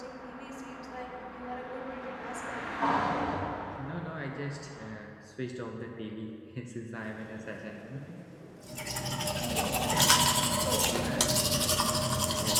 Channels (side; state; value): both; identical; correlation 1.00